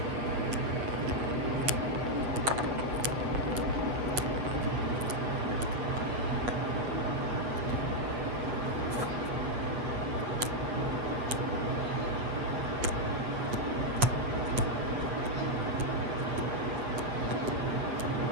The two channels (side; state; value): left; late; 8.5 ms